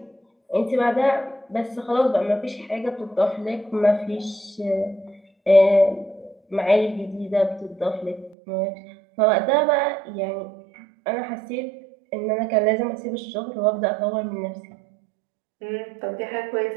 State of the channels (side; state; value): left; drops out; at 8.3 s